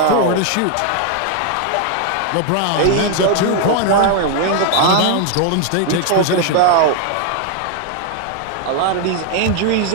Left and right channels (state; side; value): different; both; correlation 0.00